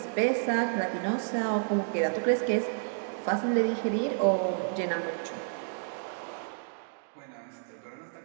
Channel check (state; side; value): silent; left; digital silence